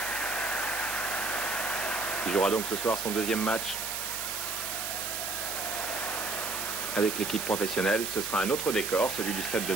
Il jouera donc ce soir son deuxième match avec l'équipe professionnelle. Ce sera un autre décor, celui du stade de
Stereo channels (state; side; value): noise; right; hiss, 3 dB below the sound